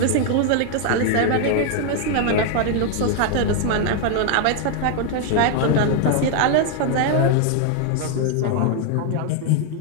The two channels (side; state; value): both; different; correlation 0.00